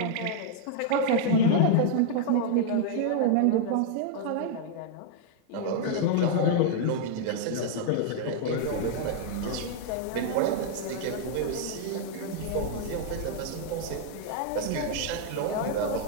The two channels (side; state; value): both; different; correlation -0.01